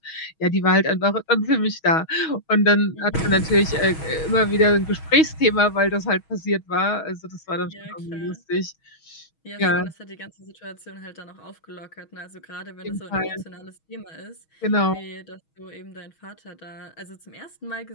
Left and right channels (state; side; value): late; right; 6.3 ms